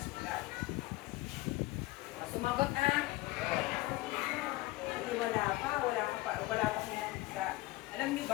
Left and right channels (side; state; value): right; quieter; 19.4 dB